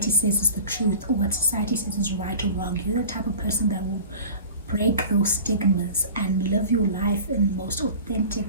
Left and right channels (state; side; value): inverted; both; correlation -0.39